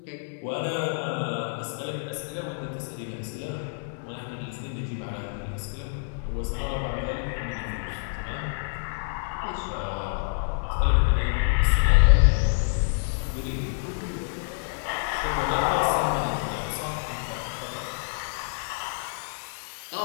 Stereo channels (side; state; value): right; silent; digital silence